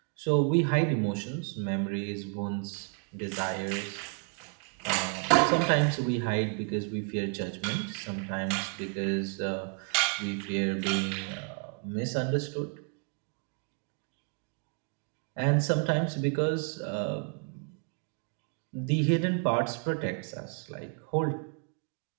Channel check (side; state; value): left; quieter; 39.9 dB